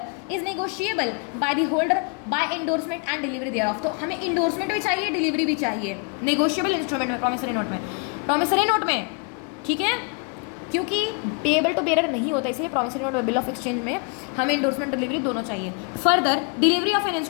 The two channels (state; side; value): quieter; right; 33.5 dB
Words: is negotiable by the holder by endorsement and delivery thereof. तो हमें endorsement भी चाहिए, delivery भी चाहिए negotiable instrument में, promissory note में, ठीक है, क्योंकि पेएबल टू बेयर नहीं होता, इसलिए promissory note bill of exchange में हमें इंडोर्समेंट डिलीवरी दोनों चाहिए. Further delivery of an